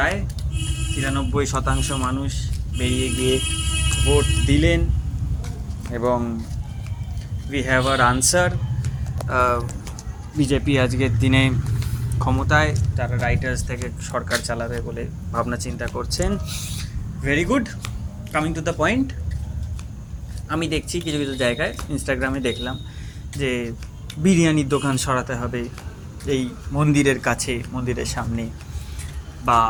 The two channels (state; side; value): identical; both; correlation 1.00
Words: 93% মানুষ বেরিয়ে গিয়ে ভোট দিলেন এবং we have our answer. BJP আজকের দিনে ক্ষমতায়, তারা রাইটার্স থেকে সরকার চালাবে বলে ভাবনা চিন্তা করছেন। Very good. Coming to the point, আমি দেখছি কিছু কিছু জায়গায় ইনস্টাগ্রামে দেখলাম যে বিরিয়ানির দোকান সরাতে হবে এই মন্দিরের কাছে, মন্দিরের সামনে, বা